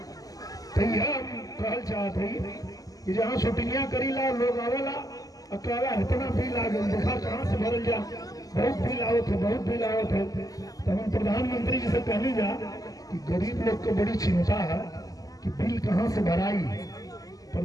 तो यह कहल चाहते हैं कि जहाँ शूटिंगियां करी ला लोग आवेला अकेला इतना बिल आ गया, देखा कहाँ से भरल जा, बहुत बिल आओ थे, बहुत बिल आओ थे। तो हम प्रधानमंत्री जी से कहने जा कि गरीब लोग को बड़ी चिंता है कि बिल कहाँ से भराई।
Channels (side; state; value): right; late; 0.17 ms